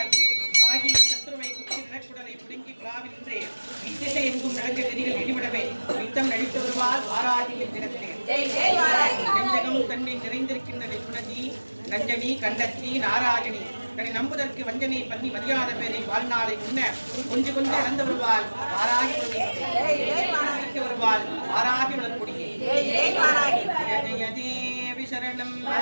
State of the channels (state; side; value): inverted; both; correlation -1.00